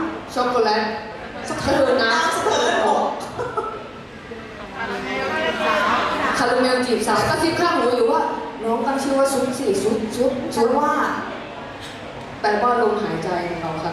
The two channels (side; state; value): both; identical; correlation 1.00